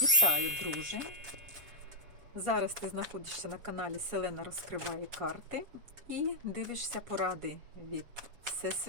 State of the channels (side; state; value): left; late; 7.4 ms